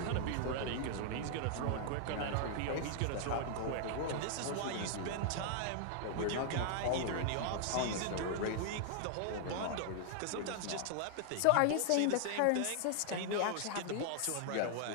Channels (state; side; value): different; both; correlation 0.00